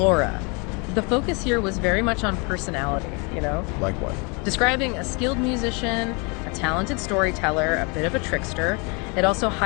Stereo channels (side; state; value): right; quieter; 31.7 dB